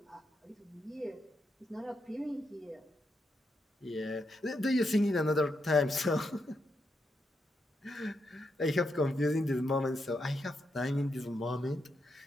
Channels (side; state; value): both; normal; correlation 0.82